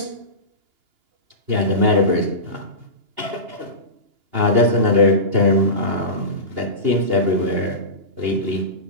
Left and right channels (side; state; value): left; late; 2.9 ms